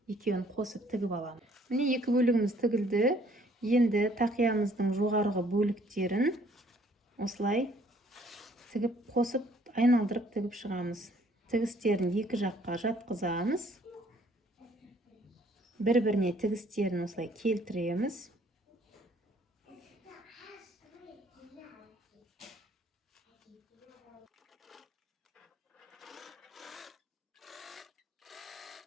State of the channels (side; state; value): both; normal; correlation 0.61